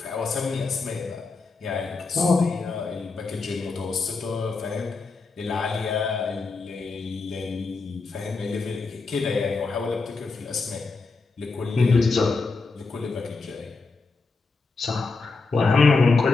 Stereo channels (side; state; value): right; quieter; 4.1 dB